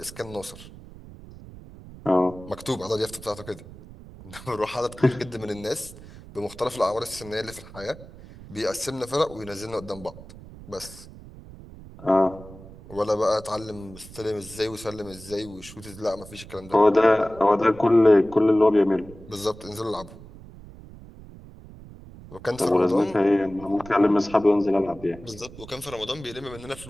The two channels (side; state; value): right; noise; rumble, 17 dB below the sound